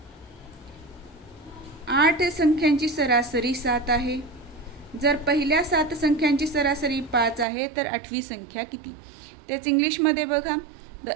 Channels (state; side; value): drops out; left; at 7.5 s